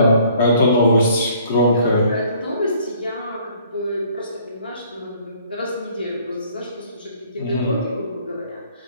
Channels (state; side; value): inverted; both; correlation -0.58